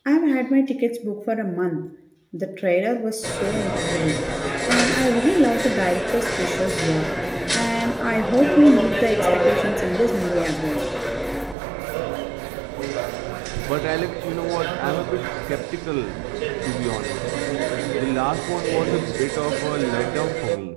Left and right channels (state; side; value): drops out; left; at 11.6 s